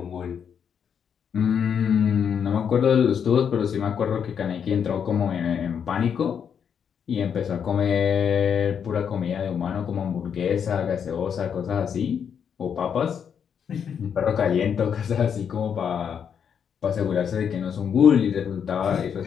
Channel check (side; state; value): right; quieter; 7.6 dB